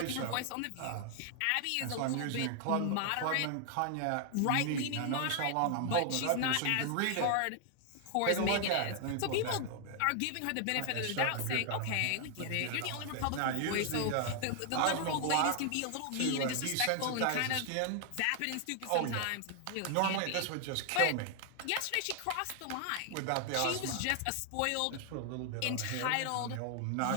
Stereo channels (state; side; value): different; both; correlation 0.00